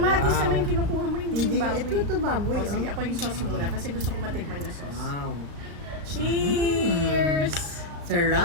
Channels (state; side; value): late; left; 35 ms